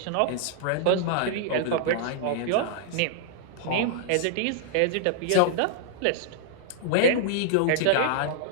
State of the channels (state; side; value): different; both; correlation -0.01